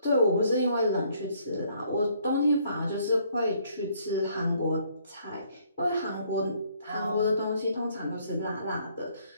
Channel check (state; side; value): inverted; both; correlation -0.65